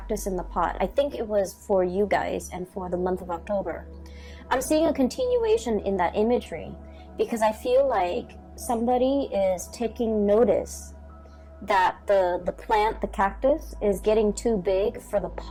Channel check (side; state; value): both; identical; correlation 1.00